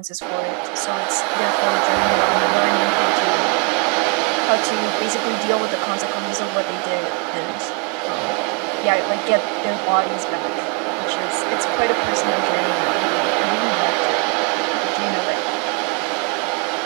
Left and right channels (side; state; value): left; quieter; 34.2 dB